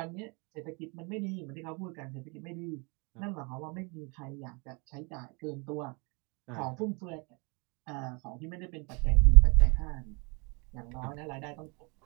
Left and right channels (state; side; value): quieter; left; 31.4 dB